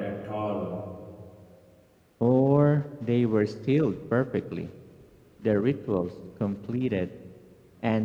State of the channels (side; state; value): both; identical; correlation 1.00